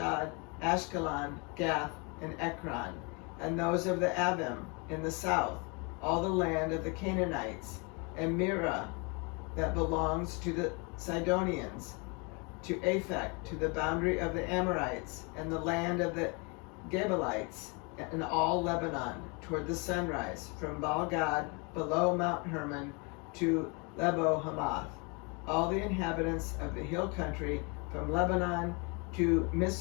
Ashkelon, Gath, and Ekron, and those of the Avim in the south, all the land of the Canaanites, and Mirah that belongs to the Sidonians, to Aphek, to the boundary of the Amorites, and the land of the Gebalites, and all Lebanon, toward the sunrise, from Baal-gad below Mount Hermon to Lebo Hamath, all the inhabitants of the hill country, from Lebanon to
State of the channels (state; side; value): quieter; right; 31.8 dB